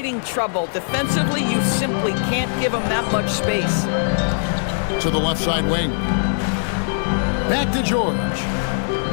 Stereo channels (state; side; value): silent; right; 56 dB below the other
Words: trouble. Defensively, you simply can't give them that much space. To the left side wing. Back to George.